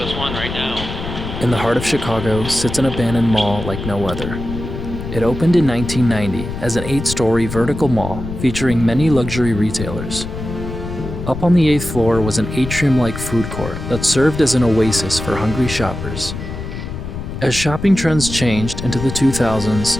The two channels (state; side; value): noise; left; rumble, 7 dB below the sound